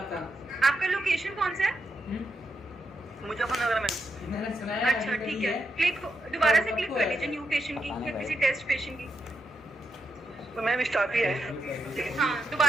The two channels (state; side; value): normal; both; correlation 0.83